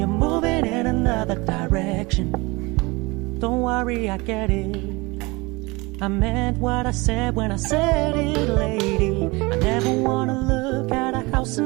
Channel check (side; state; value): left; quieter; 24.5 dB